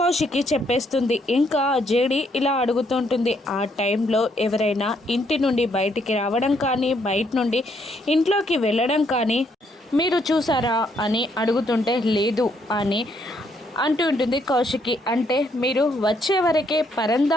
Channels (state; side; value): normal; both; correlation 0.72